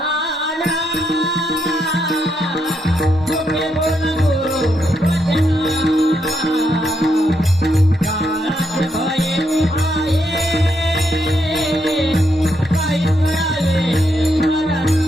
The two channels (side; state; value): both; normal; correlation 0.79